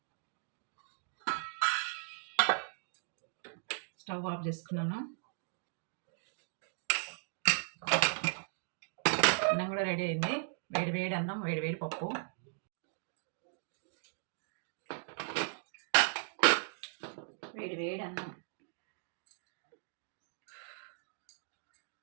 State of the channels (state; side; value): silent; left; digital silence